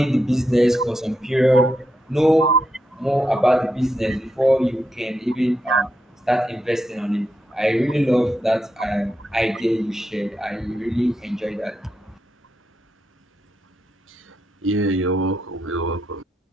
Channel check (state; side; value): normal; both; correlation 0.84